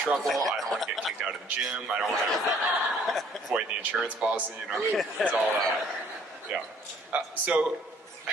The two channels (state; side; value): normal; both; correlation 0.59